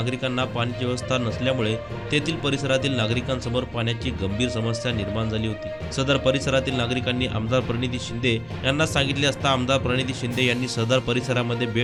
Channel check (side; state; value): left; noise; hum, 29 dB below the sound